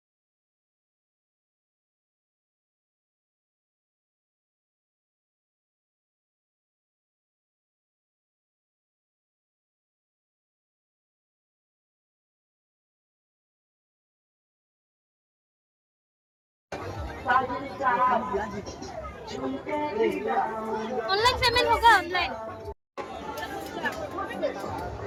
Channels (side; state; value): both; identical; correlation 1.00